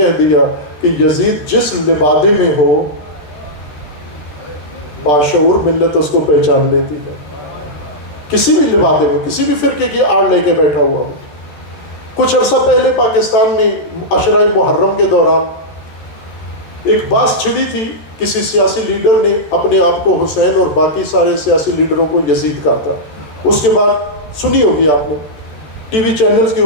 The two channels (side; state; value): right; late; 14 ms